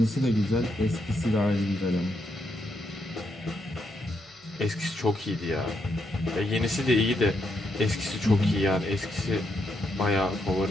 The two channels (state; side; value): normal; both; correlation 0.79